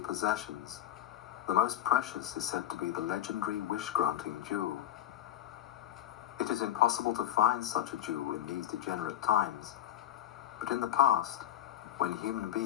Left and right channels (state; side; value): quieter; right; 11.7 dB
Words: possessions, the most precious is said to be the legendary wish-granting jewel. It is impossible to find such a jewel in these degenerate times, but in the past, when human